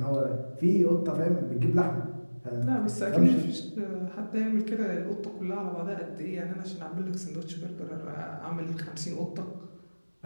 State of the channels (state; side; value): inverted; both; correlation -1.00